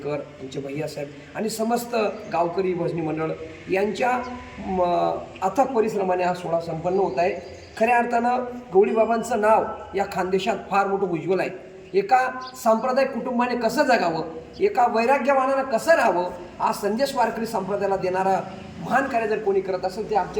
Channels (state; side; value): identical; both; correlation 1.00